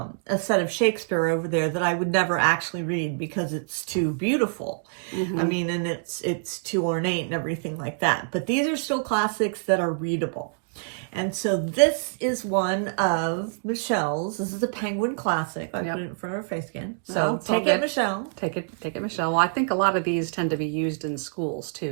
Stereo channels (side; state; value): left; silent; digital silence